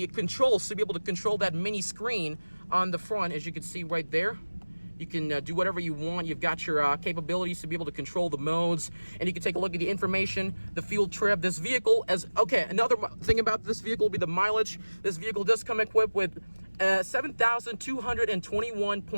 controls to be able to control that mini screen on the front, as you can see right there. You can do whatever you want. You've got your capabilities to be able to control the modes, and you can take a look at the information, the fuel trip. This vehicle, another thing about this vehicle will be the mileage. This vehicle does come equipped with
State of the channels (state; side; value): inverted; both; correlation -1.00